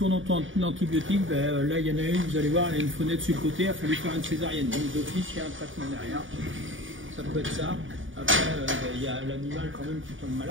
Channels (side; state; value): left; late; 0.57 ms